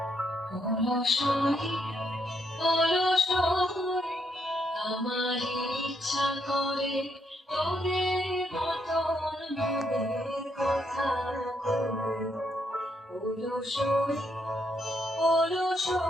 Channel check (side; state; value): both; normal; correlation 0.76